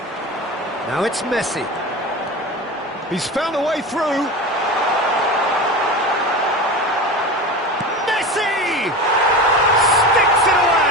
Now it's Messi. He's found a way through. Messi! Sticks it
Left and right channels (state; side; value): normal; both; correlation 0.28